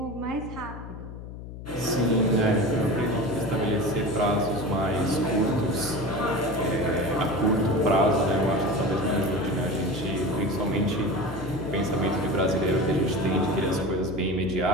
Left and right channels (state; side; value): noise; left; hum, 11 dB below the sound